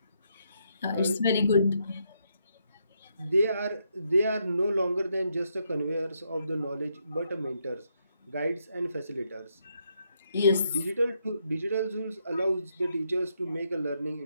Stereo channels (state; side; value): inverted; both; correlation -0.78